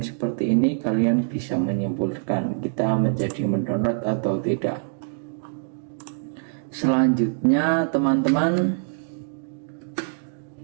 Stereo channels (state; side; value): silent; left; digital silence